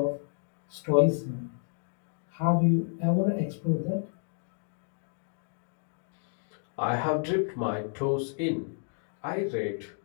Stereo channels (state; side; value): silent; right; digital silence